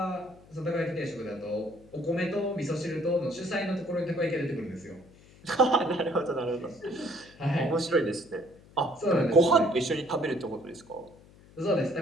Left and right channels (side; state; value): left; noise; hum, 24 dB below the sound